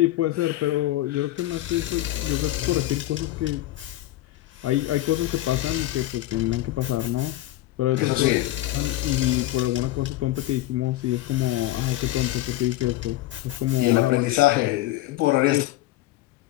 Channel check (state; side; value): quieter; right; 16.0 dB